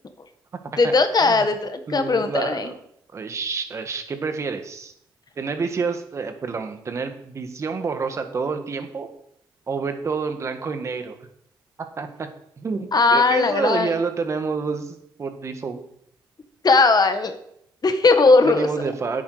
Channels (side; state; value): both; normal; correlation 0.59